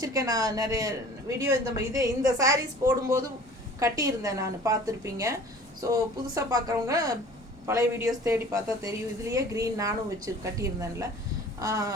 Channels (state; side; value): normal; both; correlation 0.46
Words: நான் நிறைய வீடியோ இந்த சாரீஸ் போடும்போது கட்டியிருந்தேன், நான் பார்த்துருப்பீங்க. ஸோ புதுசாக பார்க்குறவங்க பழைய வீடியோஸ் தேடி பார்த்தா தெரியும். இதுலேயே க்ரீன் நானும் வச்சு கட்டியிருந்தேன்ல.